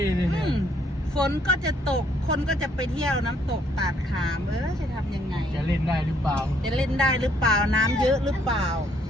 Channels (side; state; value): both; normal; correlation 0.67